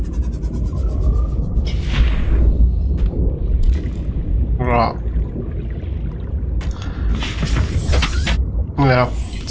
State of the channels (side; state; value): both; identical; correlation 1.00